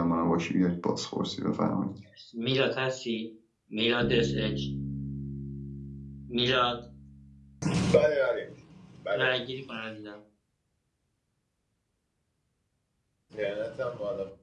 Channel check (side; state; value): both; identical; correlation 1.00